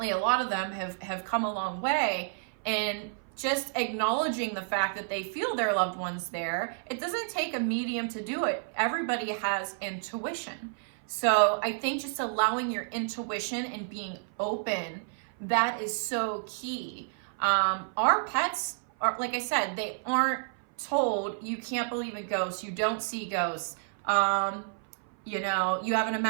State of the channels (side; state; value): left; silent; 56 dB below the other